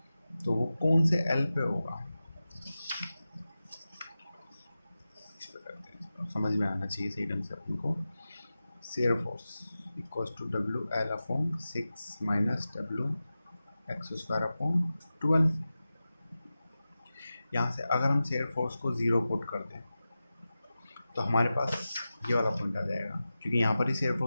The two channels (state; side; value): inverted; both; correlation -0.94